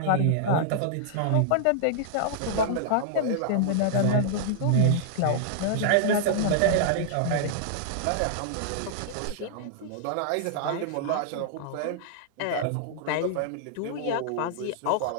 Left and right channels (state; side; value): different; both; correlation -0.01